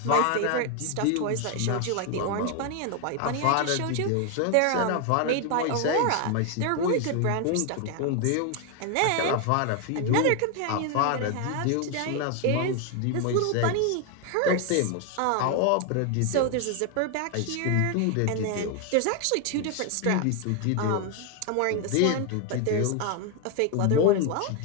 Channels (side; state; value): both; different; correlation 0.01